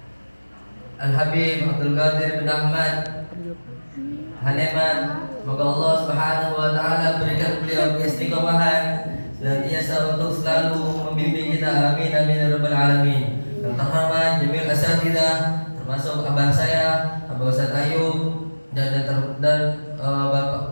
Al-Habib Abdul Qadir bin Ahmad Haneman, semoga Allah Subhanahu wa taala berikan beliau keistiqomahan dan biasa untuk selalu membimbing kita, amin amin ya rabbal alamin. Yang terhormat Jamil Asatidah, termasuk abah saya, Abah Ustaz Ayub dan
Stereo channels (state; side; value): inverted; both; correlation -1.00